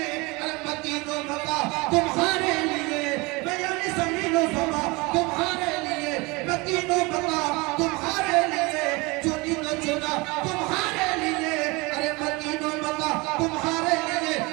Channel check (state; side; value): quieter; left; 25.3 dB